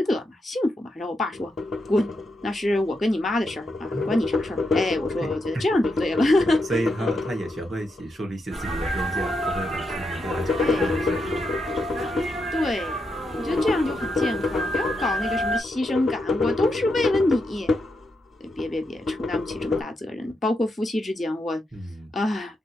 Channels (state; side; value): normal; both; correlation 0.83